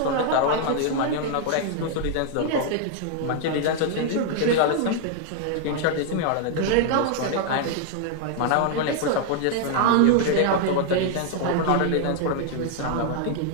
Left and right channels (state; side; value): different; both; correlation 0.00